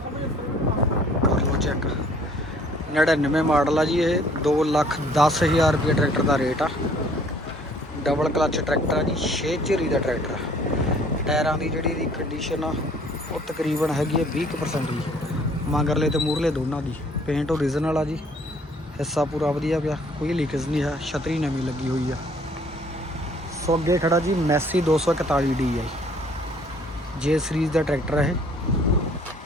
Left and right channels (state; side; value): normal; both; correlation 0.58